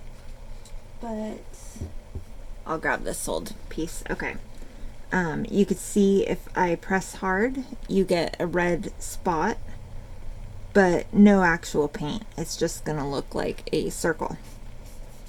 But I'll grab this old piece. Okay. You could see if I press hard, you get a red spot, but no actual paint. It's just gonna look like a circle.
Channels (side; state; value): both; identical; correlation 1.00